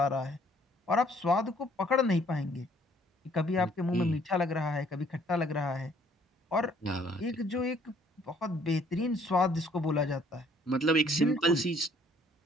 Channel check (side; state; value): both; normal; correlation 0.62